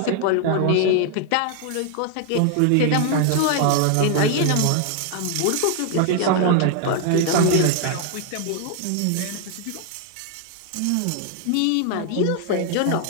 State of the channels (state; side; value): different; both; correlation 0.00